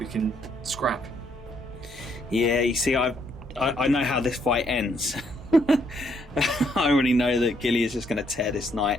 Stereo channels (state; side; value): normal; both; correlation 0.71